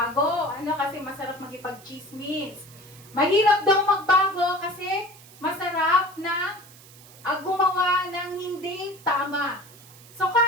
Kasi masarap magipag-chismis. Mahirap daw magbago kasi masarap na gumawa ng hindi tama. So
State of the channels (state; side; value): noise; right; hiss, 22 dB below the sound